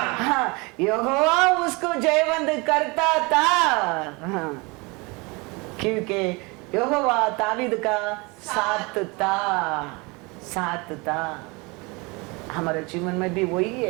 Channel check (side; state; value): left; quieter; 27.0 dB